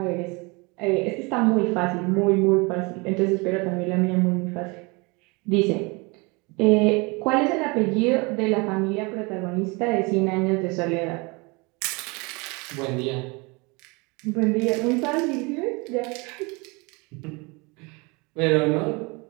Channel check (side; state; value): left; quieter; 27.8 dB